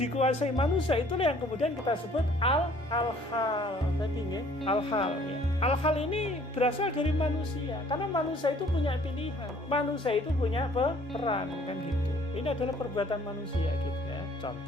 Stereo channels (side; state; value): both; normal; correlation 0.57